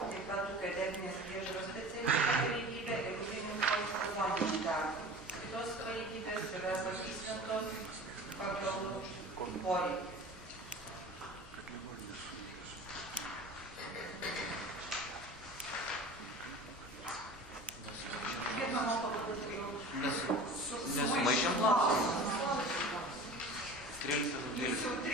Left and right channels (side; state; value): both; normal; correlation 0.38